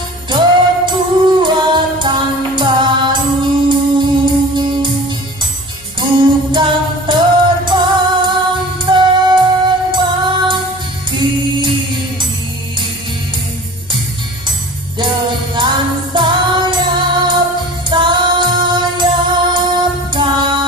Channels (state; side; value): noise; left; hum, 23 dB below the sound